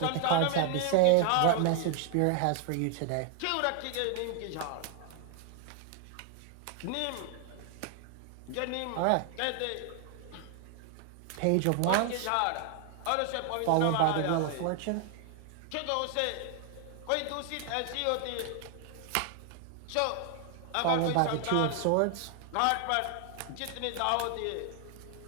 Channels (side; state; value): both; different; correlation 0.00